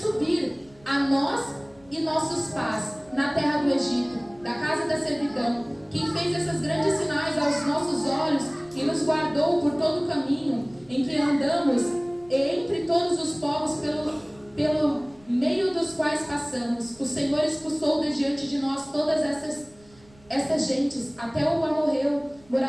a nós e nossos pais, na terra do Egito, da casa da servidão, quem fez esses grandes sinais aos nossos olhos e nos guardou por todo o caminho em que andamos e entre todos os povos pelo meio dos quais passamos. O Senhor expulsou de diante de nós todas essas gentes, até o amorreu,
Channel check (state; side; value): noise; right; rumble, 28 dB below the sound